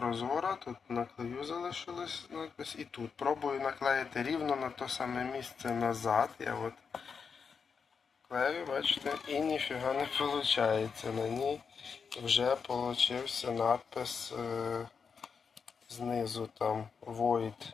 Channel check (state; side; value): quieter; right; 5.9 dB